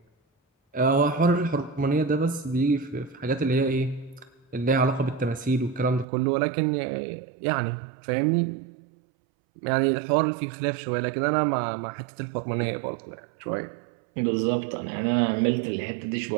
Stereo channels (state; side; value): drops out; left; at 6.1 s